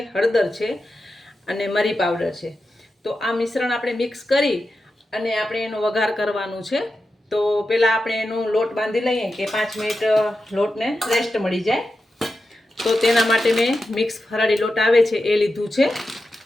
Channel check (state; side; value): normal; both; correlation 0.90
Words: હળદર છે અને મરી પાવડર છે। તો આ મિશ્રણ આપણે મિક્સ કરી અને આપણે એનો વઘાર કરવાનું છે। તો પહેલાં આપણે એનો લોટ બાંધી લઈએ કે 5 મિનિટ લોટને રેસ્ટ મળી જાય। તો તેના માટે મેં મિક્સ ફરાળી લોટ આવે છે એ લીધું છે।